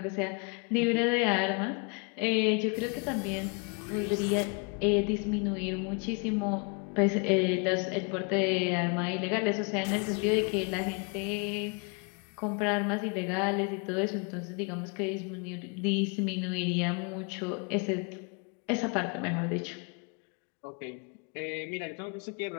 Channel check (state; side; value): quieter; right; 34.3 dB